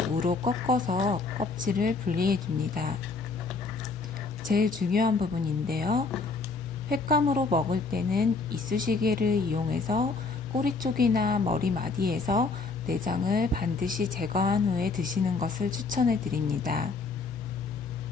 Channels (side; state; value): right; quieter; 4.2 dB